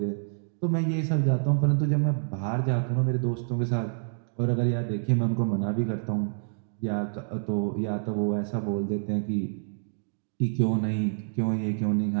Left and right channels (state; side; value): silent; left; digital silence